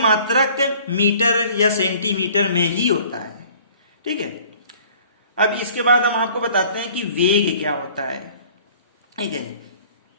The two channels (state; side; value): inverted; both; correlation -0.52